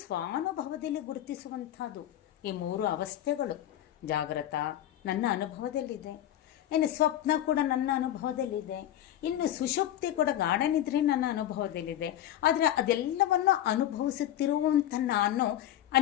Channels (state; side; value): quieter; right; 12.2 dB